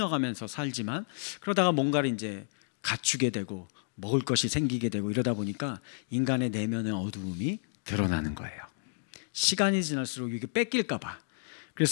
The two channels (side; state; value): right; silent; digital silence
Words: 살지만 그러다가 뭔가를 이제 갖추게 되고 먹을 것이 생기게 되고 이러다 보니까 인간의 내면의 어두움이 드러나는 거예요. 시간이 지날수록 이게 뺏길까 봐.